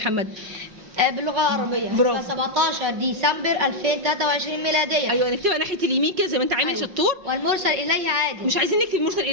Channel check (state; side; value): late; left; 5.6 ms